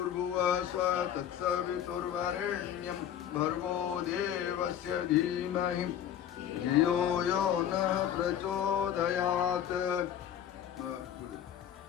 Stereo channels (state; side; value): quieter; right; 10.0 dB